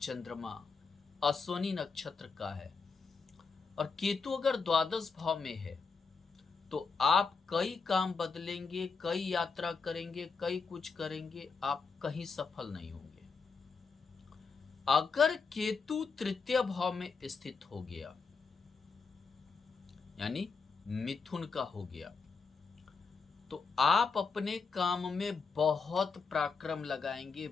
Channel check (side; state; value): right; quieter; 4.9 dB